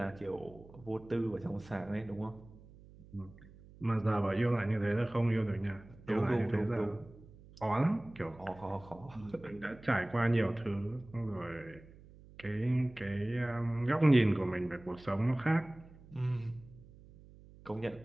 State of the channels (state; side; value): noise; right; hum, 21 dB below the sound